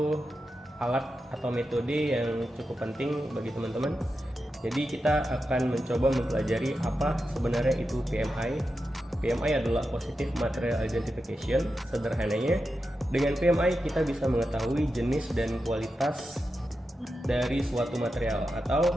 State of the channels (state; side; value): normal; both; correlation 0.90